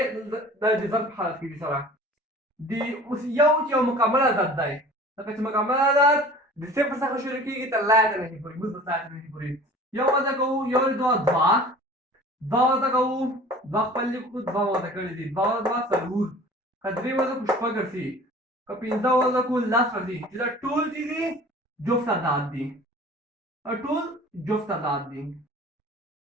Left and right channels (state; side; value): normal; both; correlation 0.44